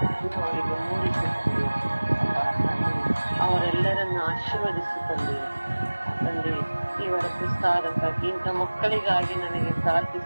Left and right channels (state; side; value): inverted; both; correlation -1.00